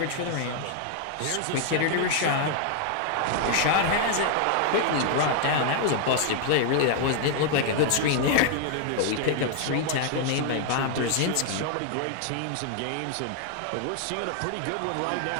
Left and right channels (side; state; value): both; different; correlation 0.00